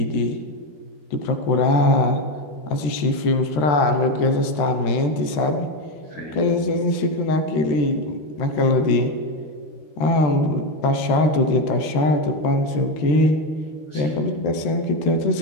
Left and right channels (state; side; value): late; right; 13 ms